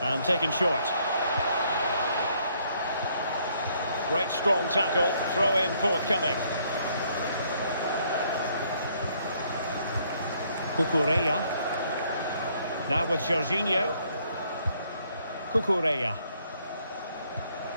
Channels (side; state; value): both; inverted; correlation -0.67